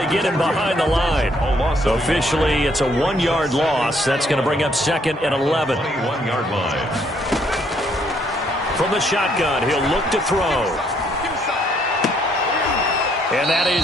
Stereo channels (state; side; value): normal; both; correlation 0.69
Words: get him behind the line. So officially, it's a 1-yard loss. That's going to bring up 2nd and 11. 21-yard line. From the shotgun, he'll look to throw. And that